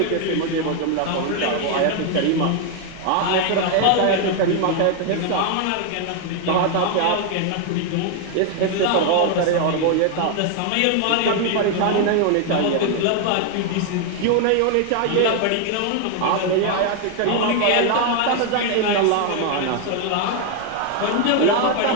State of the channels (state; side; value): different; both; correlation 0.00